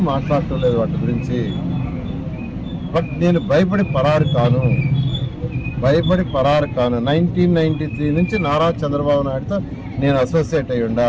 మాట్లాడటలేదు వాటి గురించి. బట్ నేను భయపడి పరారు కాను. 1993 నుంచి నారా చంద్రబాబు నాయుడుతో నేను అసోసియేట్ అయ్యి ఉండా.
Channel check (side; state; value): both; identical; correlation 1.00